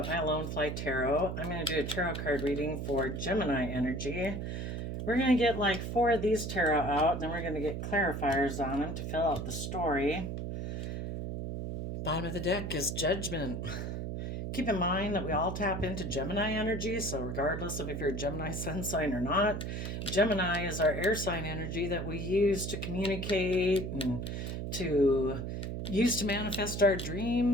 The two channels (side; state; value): right; noise; hum, 4 dB below the sound